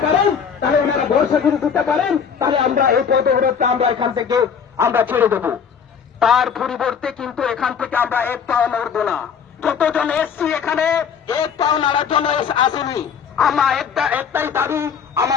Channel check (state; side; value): quieter; right; 7.0 dB